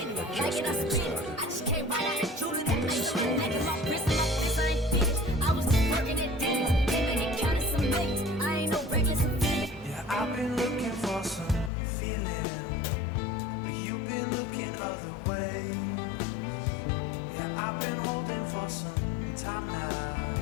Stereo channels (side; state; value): right; drops out; at 11.7 s